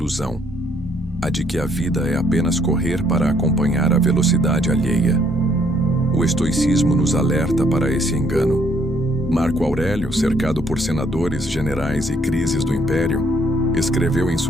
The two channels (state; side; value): normal; both; correlation 0.67